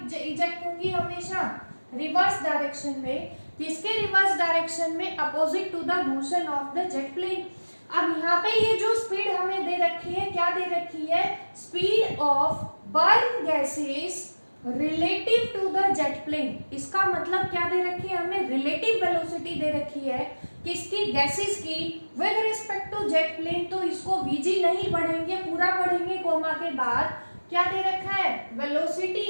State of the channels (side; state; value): both; inverted; correlation -1.00